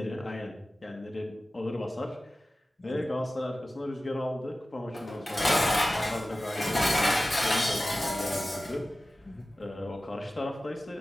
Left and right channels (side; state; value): both; normal; correlation 0.96